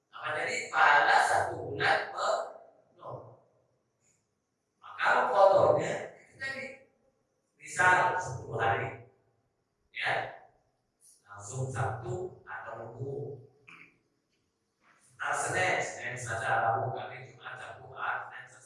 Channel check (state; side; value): identical; both; correlation 1.00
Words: Apa tadi? Pahala 1 bulan penuh. Maka kotornya itu tadi misal 10 hari, ya langsung Sabtu atau Minggu. Senin, Selasa, Rabu, Kamis, Jumat, Sabtu, Ahad, Senin,